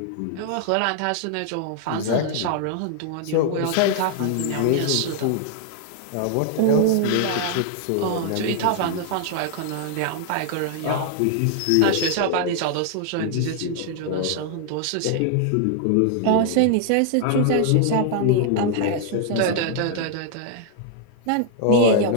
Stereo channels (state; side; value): different; both; correlation 0.00